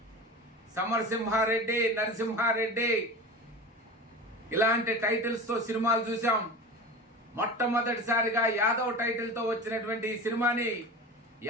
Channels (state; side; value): normal; both; correlation 0.32